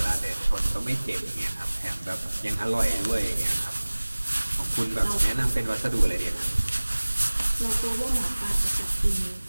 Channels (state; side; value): inverted; both; correlation -1.00